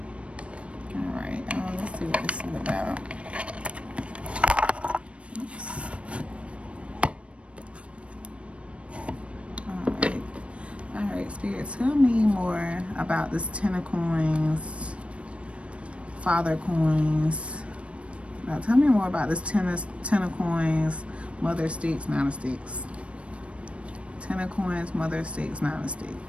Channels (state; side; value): late; left; 0.061 ms